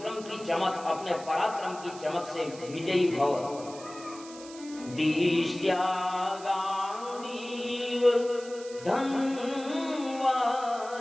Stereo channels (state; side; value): noise; right; hiss, 17 dB below the sound